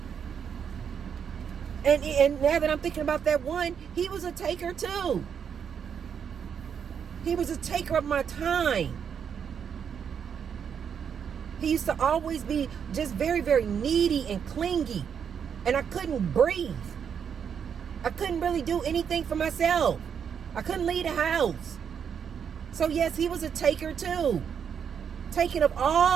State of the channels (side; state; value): left; quieter; 7.5 dB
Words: And now that I'm thinking about that one, he was a taker too. He was a taker of my time. He used to always be just very, very needy and clingy. And I couldn't breathe. I couldn't really do anything for myself. I couldn't leave the house. So yes, he was a taker too. Taking of